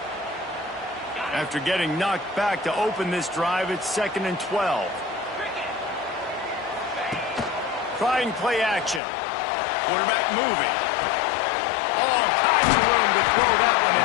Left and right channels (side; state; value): right; drops out; at 9.0 s